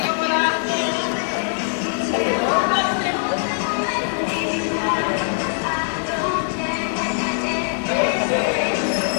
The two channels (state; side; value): silent; right; digital silence